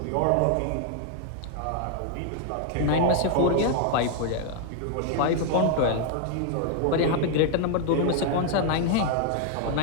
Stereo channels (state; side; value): different; both; correlation 0.00